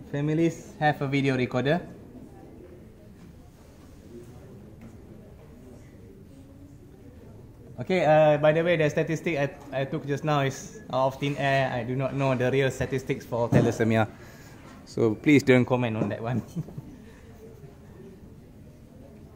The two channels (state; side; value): identical; both; correlation 1.00